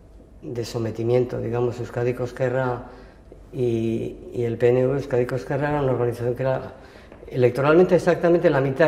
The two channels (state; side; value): identical; both; correlation 1.00